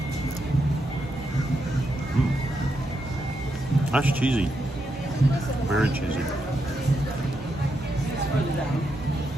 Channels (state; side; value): normal; both; correlation 0.83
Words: That's cheesy. Very cheesy.